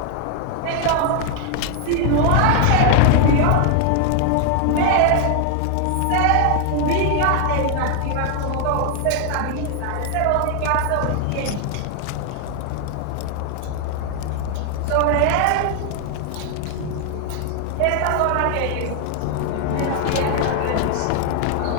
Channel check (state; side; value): different; both; correlation 0.00